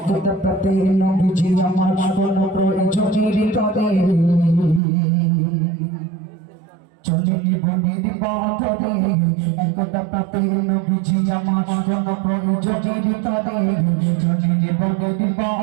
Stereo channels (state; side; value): drops out; left; at 4.8 s